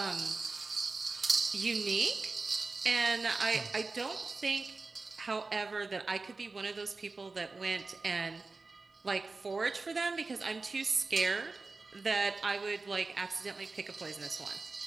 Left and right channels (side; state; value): left; quieter; 3.8 dB